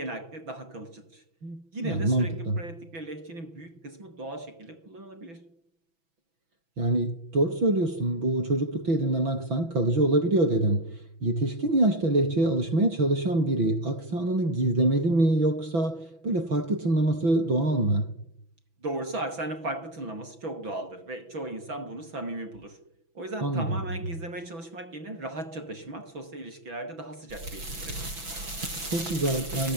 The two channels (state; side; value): late; left; 6.0 ms